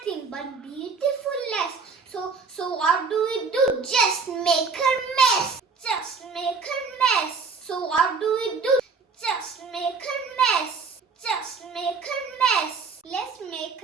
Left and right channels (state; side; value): quieter; left; 4.9 dB